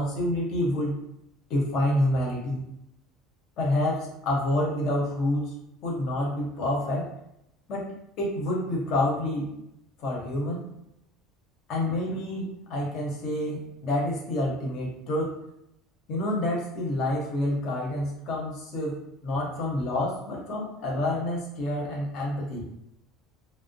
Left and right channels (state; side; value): normal; both; correlation 0.53